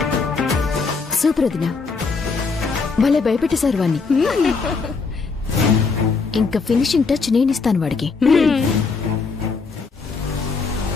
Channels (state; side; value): quieter; right; 4.6 dB